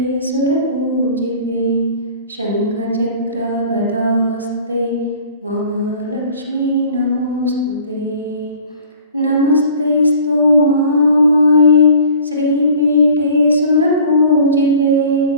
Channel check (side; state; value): both; inverted; correlation -0.47